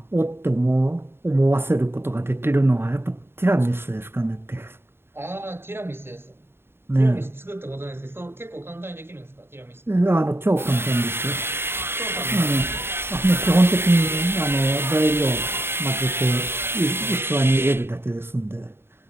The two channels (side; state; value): left; late; 0.11 ms